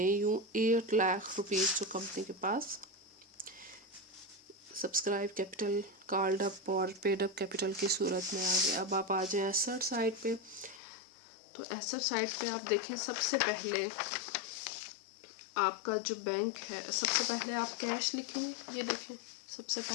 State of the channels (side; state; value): right; drops out; at 10.8 s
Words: यूँ 8 लाख रुपीज़ जो कंपनी के पास सब्सक्राइब कैपिटल, कॉल्ड अप और पेड अप कैपिटल की सूरत में आ गया। अब आप आ जाएं एसेट साइड पे, तो एसेट साइड पे आप देखें सबसे पहले आपका जो बैंक है, सबसे पहले आप कैश लिखेंगे। ये देखें सबसे